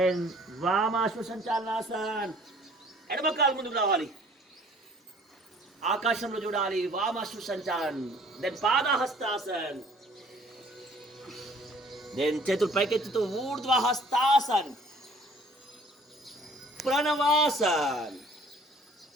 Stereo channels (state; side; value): normal; both; correlation 0.55